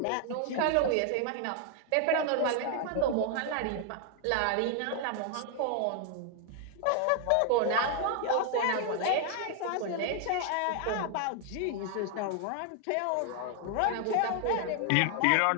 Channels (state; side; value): different; both; correlation 0.00